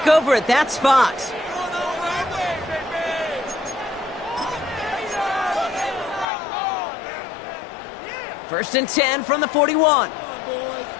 over at that spot. First and 10 from the 41.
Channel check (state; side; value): drops out; right; at 6.2 s